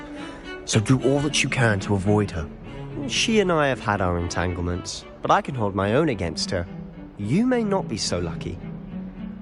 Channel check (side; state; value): both; identical; correlation 1.00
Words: so do all that you can to avoid her. She and I have had our entanglements, but I can hold my own against her. You may not be so lucky.